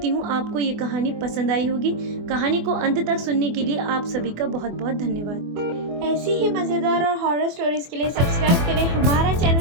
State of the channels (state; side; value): late; left; 24 ms